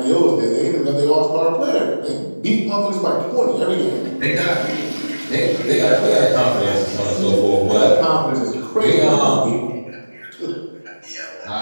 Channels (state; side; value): inverted; both; correlation -1.00